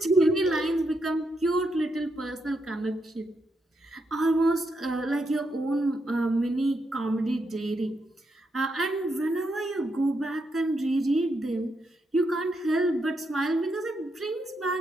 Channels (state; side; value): normal; both; correlation 0.81